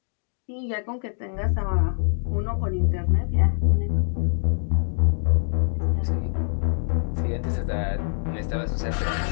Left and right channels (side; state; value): right; silent; digital silence